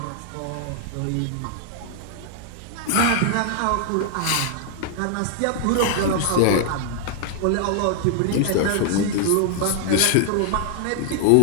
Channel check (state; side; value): different; both; correlation 0.00